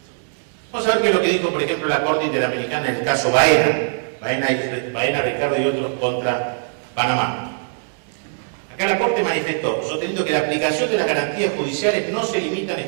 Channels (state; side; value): silent; left; digital silence